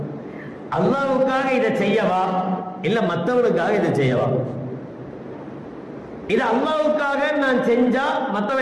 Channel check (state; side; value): identical; both; correlation 1.00